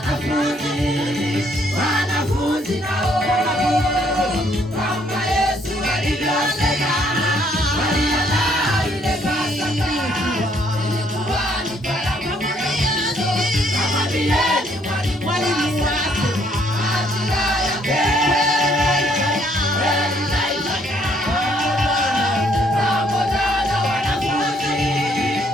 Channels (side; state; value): both; normal; correlation 0.67